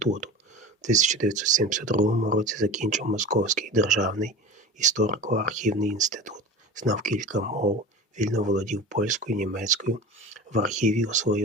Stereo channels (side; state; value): both; normal; correlation 0.33